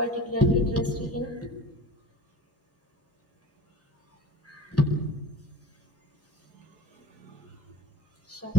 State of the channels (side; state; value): both; normal; correlation 0.37